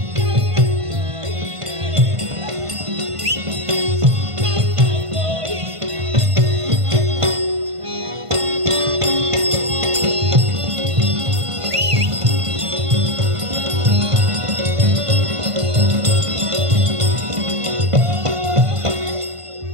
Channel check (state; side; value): late; left; 1.5 ms